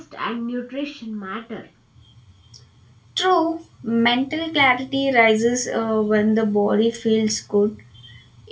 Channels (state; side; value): identical; both; correlation 1.00